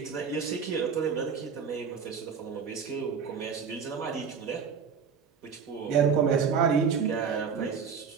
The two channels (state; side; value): quieter; left; 6.3 dB